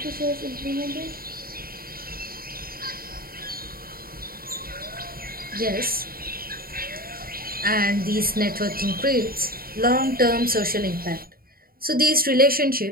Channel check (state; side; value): late; left; 0.43 ms